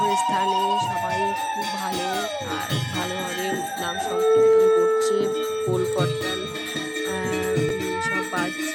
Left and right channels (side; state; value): both; identical; correlation 1.00